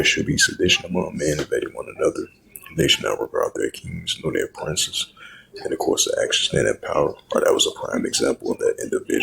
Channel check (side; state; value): both; identical; correlation 1.00